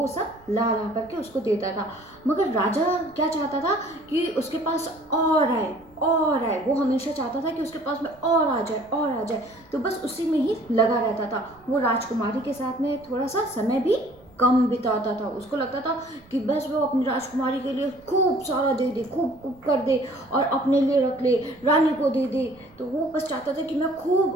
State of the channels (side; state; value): right; noise; rumble, 27 dB below the sound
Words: सब ला ला करके उसको देता था। मगर राजा क्या चाहता था कि उसके पास और आए और आए। वो हमेशा चाहता था कि उसके पास में और आ जाए और आ जाए। तो बस उसी में ही लगा रहता था। वो राजकुमारी के साथ में थोड़ा सा समय भी कम बिताता था। उसको लगता था कि बस वो अपनी राजकुमारी के लिए खूब सारा दे दे, खूब खूब कर दे और अपने लिए रख ले, रानी को दे दे। तो वो बस चाहता था कि मैं